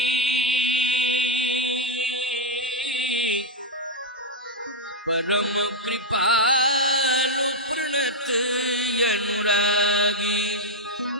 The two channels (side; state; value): both; normal; correlation -0.02